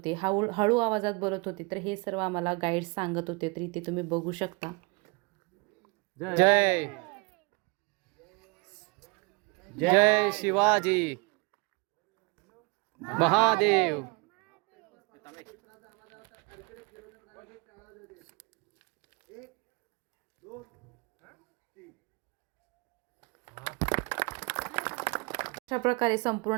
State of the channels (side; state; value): left; quieter; 29.0 dB